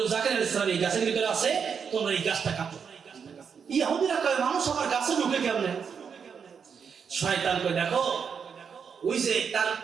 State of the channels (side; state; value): left; quieter; 6.6 dB